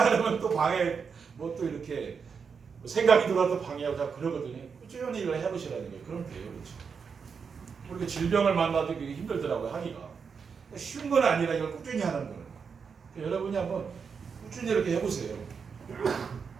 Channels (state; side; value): quieter; left; 6.0 dB